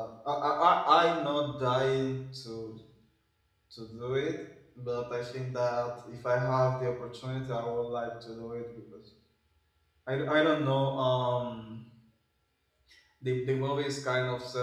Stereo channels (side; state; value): both; identical; correlation 1.00